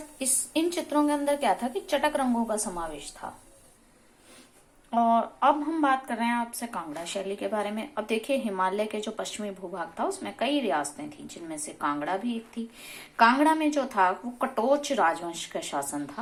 इन चित्रों के अंदर क्या था कि चटक रंगों का समावेश था। और अब हम बात कर रहे हैं आपसे कांगड़ा शैली के बारे में। अब देखिए, हिमालय के जो पश्चिमी भूभाग था उसमें कई रियासतें थी, जिनमें से कांगड़ा भी एक थी। कांगड़ा में जो था वो कटोच राजवंश का शासन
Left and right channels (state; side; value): identical; both; correlation 1.00